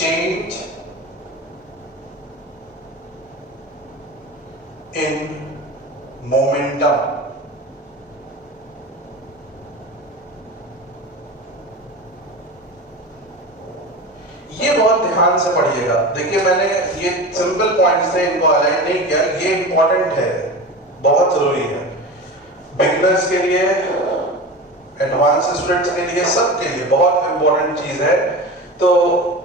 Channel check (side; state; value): both; normal; correlation 0.30